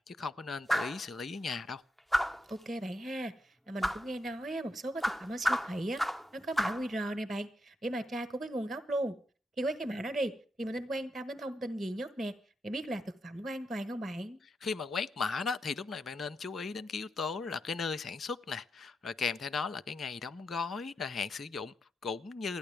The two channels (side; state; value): both; normal; correlation 0.84